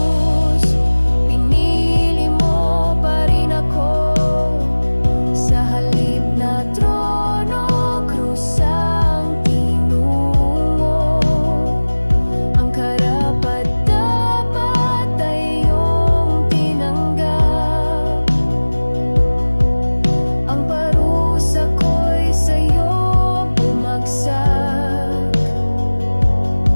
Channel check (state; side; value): inverted; both; correlation -1.00